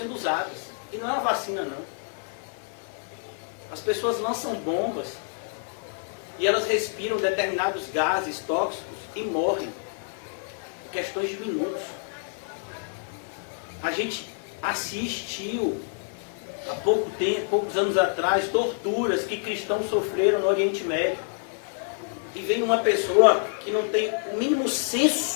usadas. E não é uma vacina, não. As pessoas lançam bombas e elas respiram determinados gases tóxicos e morrem. Em questões de minutos. A gente assistiu há pouco tempo, poucos anos atrás, torturas que cristãos sofreram no Oriente Médio. E vem uma pessoa que não tem o mínimo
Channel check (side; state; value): right; silent; digital silence